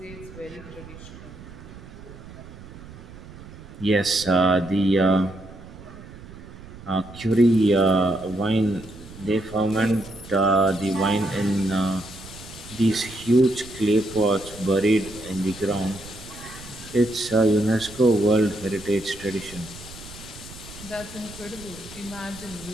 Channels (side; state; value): right; noise; rumble, 17 dB below the sound